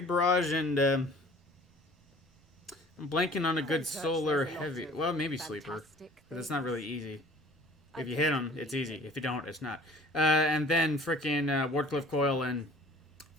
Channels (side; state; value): both; normal; correlation 0.49